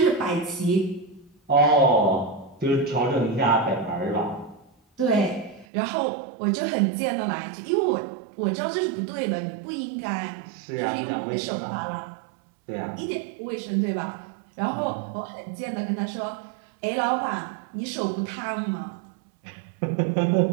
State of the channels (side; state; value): left; drops out; at 5.7 s